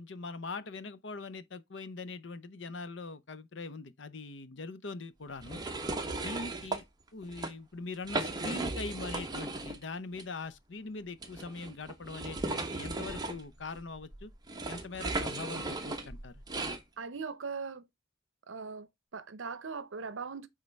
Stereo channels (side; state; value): both; normal; correlation 0.20